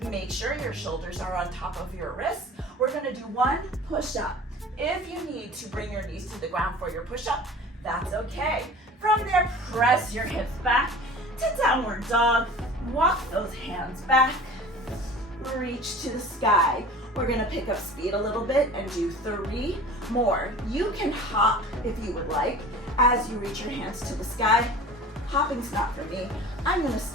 Make sure your shoulders are on top of your wrists. We're gonna do one push-up. If you need to bring your knees to the ground for your push-up, that's okay. From there, press your hips back to downward dog. Walk those hands back. Reach to the sky. We're gonna pick up speed a little bit and do 3 more. You can hop if you would like as you reach your hands to the sky. Hopping's not for me. I'm gonna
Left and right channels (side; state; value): both; normal; correlation 0.41